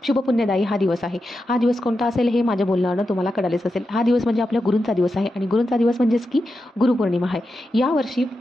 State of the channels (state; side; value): normal; both; correlation 0.89